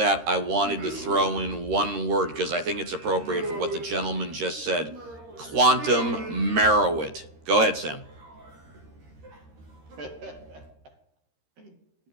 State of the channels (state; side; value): late; left; 13 ms